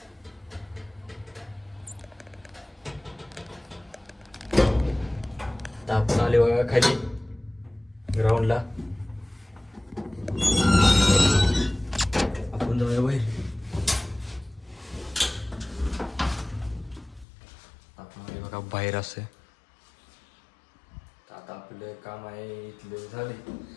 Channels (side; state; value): right; drops out; at 17.2 s